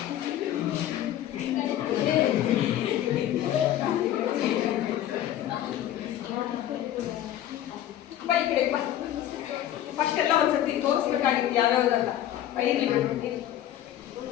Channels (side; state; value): right; quieter; 12.1 dB